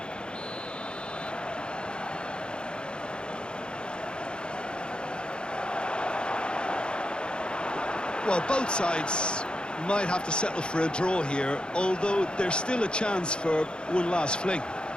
Well, both sides might have to settle for a draw here, although there's still a chance for one last fling.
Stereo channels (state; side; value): late; right; 0.051 ms